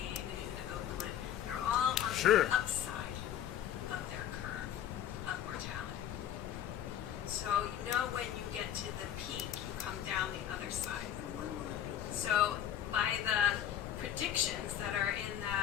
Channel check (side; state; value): right; quieter; 10.6 dB